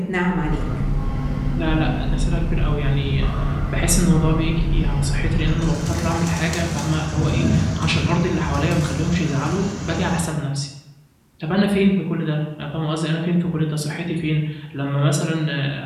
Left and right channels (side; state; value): both; identical; correlation 1.00